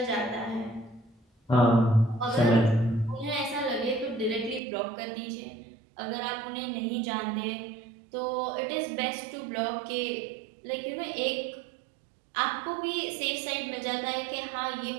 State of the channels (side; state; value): left; drops out; at 4.6 s